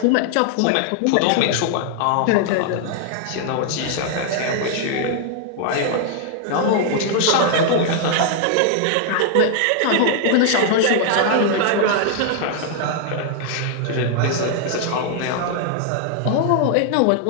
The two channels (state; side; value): different; both; correlation 0.00